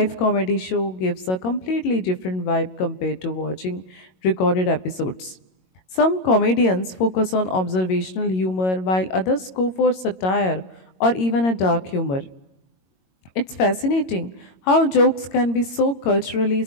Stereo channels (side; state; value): right; late; 22 ms